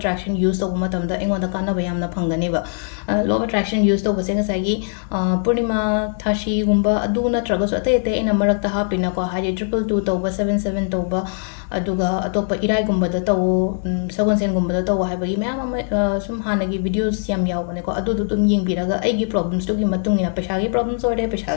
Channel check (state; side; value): silent; right; 65 dB below the other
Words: ꯌꯨꯁ ꯇꯧꯕ ꯃꯇꯝꯗ ꯑꯩꯉꯣꯟꯗ ꯀꯥꯟꯅꯕ ꯌꯥꯝꯅ ꯐꯪꯒꯅꯦꯕ ꯂꯣ ꯑꯣꯐ ꯑꯦꯇ꯭ꯔꯦꯛꯁꯟ ꯌꯨꯁ ꯇꯧꯕꯁꯦ ꯉꯁꯥꯏꯒꯤ ꯄꯨꯔꯅꯤꯃꯥ ꯊꯥꯁꯤꯒꯨꯝꯕ ꯑꯗꯨ ꯅꯠꯇ꯭ꯔꯒꯁꯨ ꯑꯇꯩ ꯑꯩꯅ ꯃꯔꯛꯇ ꯍꯥꯞꯄꯤꯅꯀꯣ ꯍꯥꯏꯗꯤ 222 ꯇꯧꯕ 77 ꯇꯧꯕ ꯑꯗꯨꯒ ꯑꯇꯣꯞꯄ ꯏꯔꯥꯏꯒꯨꯝꯕꯗ ꯇꯧꯋꯣ ꯁꯒꯣꯜꯁꯦꯟꯒꯨꯝꯕꯗ ꯇꯧꯋꯣ ꯍꯥꯏꯕꯒꯤ ꯃꯌꯥꯝ ꯑꯃ ꯁꯨꯝ ꯍꯥꯟꯅꯒꯤ ꯚꯤꯗꯤꯑꯣꯁ ꯌꯥꯝ ꯌꯥꯎꯕꯅꯦꯀꯣ ꯑꯗꯨꯗꯣ ꯑꯗꯨꯝ ꯌꯦꯡꯕꯤꯔꯒ ꯑꯩꯒꯤ ꯄ꯭ꯔꯣꯕ꯭ꯂꯦꯝꯁꯇꯨꯒꯤ ꯃꯇꯨꯡ ꯏꯟꯅ ꯄꯩꯁꯥꯒꯤ ꯄ꯭ꯔꯣꯕ꯭ꯂꯦꯝꯁ ꯑꯣꯏꯔꯦ